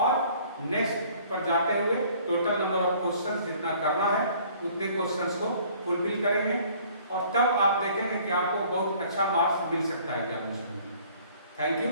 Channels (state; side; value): inverted; both; correlation -0.55